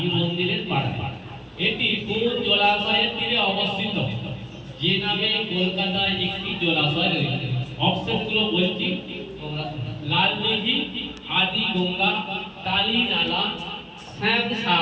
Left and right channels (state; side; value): identical; both; correlation 1.00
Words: মন্দিরের পাড়ায়। এটি কোন জলাশয়ের তীরে অবস্থিত, যে নামে কলকাতায় একটি জলাশয় রয়েছে? অপশনগুলো বলছি, লাল দিঘি, আদি গঙ্গা, কালী নালা,